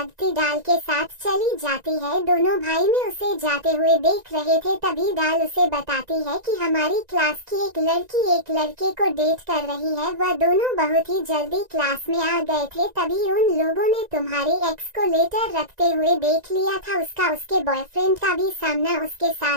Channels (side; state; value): left; late; 1.9 ms